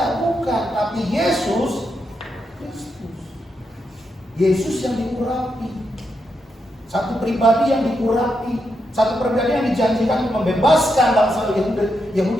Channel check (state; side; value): normal; both; correlation 0.83